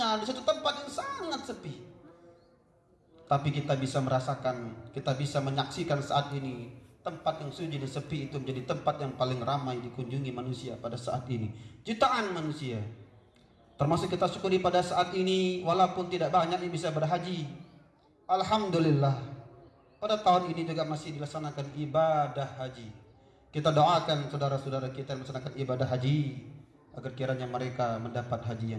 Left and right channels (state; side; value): identical; both; correlation 1.00